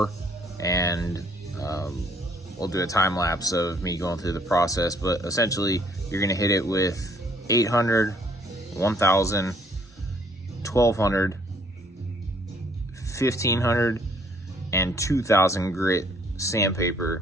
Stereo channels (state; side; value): normal; both; correlation 0.63